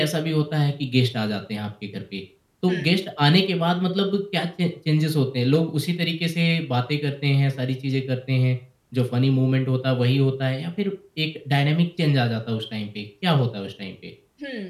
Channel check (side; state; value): both; identical; correlation 1.00